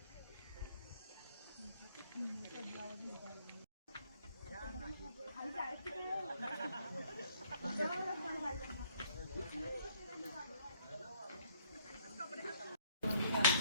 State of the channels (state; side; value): inverted; both; correlation -0.65